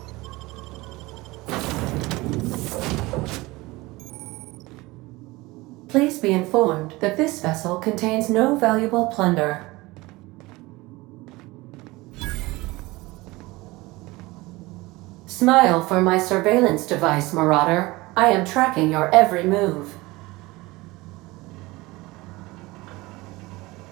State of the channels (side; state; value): left; quieter; 21.3 dB